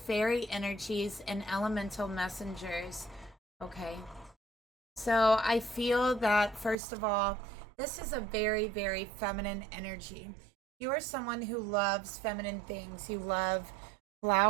energies, and elemental messengers. Okay. So I feel that, first of all, this is a very, very feminine energy. You are someone who loves feminine things. You love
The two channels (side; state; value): left; drops out; at 6.8 s